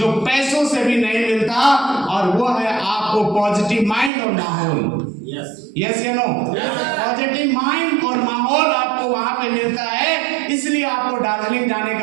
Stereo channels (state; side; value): drops out; left; at 4.1 s